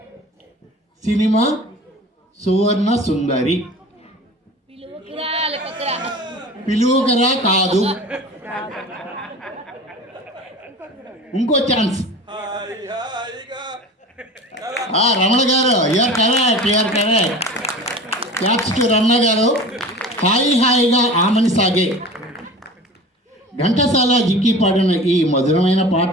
సినిమా సువర్ణ సుందరి. పిలువకరా కాదు, ఇంకో ఛాన్స్. రమణ గారు, you're correct. Claps to Ramana గారు. హాయి హాయిగా ఆమని సాగే. ఘంటసాల జిక్కి పాడిన ఈ మధురమైన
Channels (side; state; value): both; normal; correlation 0.37